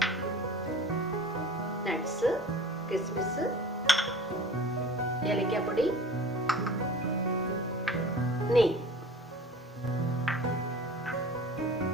നട്ട്സ്, കിസ്മിസ്, ഏലക്കാപ്പൊടി, നെയ്യ്,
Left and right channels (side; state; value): both; normal; correlation 0.42